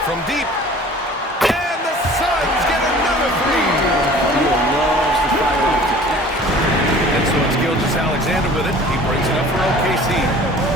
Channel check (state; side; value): normal; both; correlation 0.47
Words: from deep. And the Suns get another 3. Beal loves the fire off the catch. And so it's Gilgeous-Alexander with it. He brings it up for OKC.